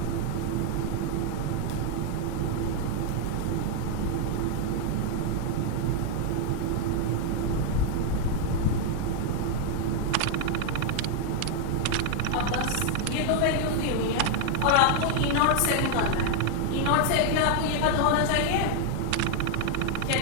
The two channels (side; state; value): both; different; correlation 0.00